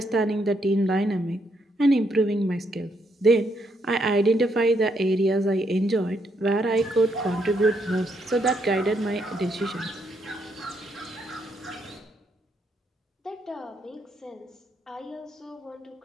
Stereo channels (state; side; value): normal; both; correlation 0.75